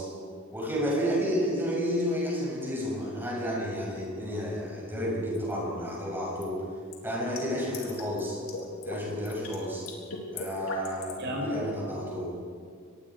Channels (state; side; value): normal; both; correlation 0.41